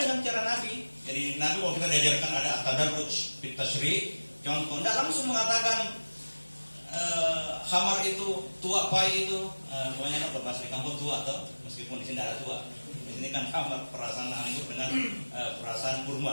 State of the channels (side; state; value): both; inverted; correlation -1.00